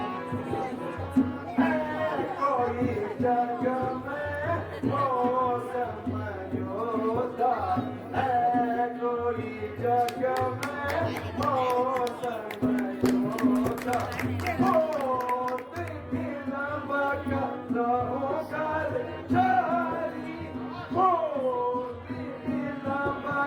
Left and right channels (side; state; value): both; identical; correlation 1.00